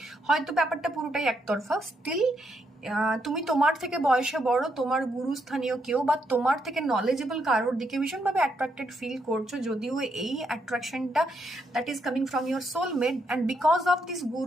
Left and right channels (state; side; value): normal; both; correlation 0.78